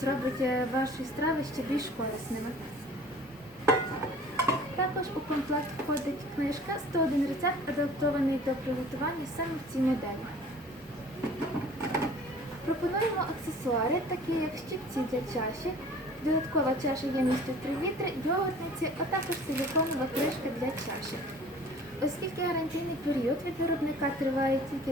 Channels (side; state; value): both; normal; correlation 0.48